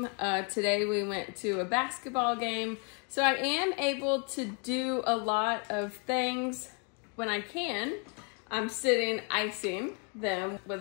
Today we went to a basketball game. So I am able to do a lot of things when I can. I'm sitting icing them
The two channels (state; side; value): quieter; right; 37.2 dB